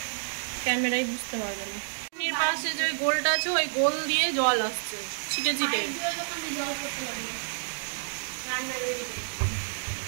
ক্যামেরায় বুঝতে পারবে না। পাশে যে ওই গোলটা আছে, ওই গোল দিয়ে জল আসছে ছিটে ছিটে,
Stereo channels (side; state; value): left; silent; digital silence